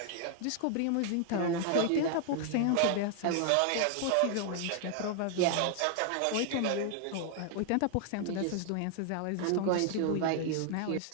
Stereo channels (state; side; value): different; both; correlation 0.00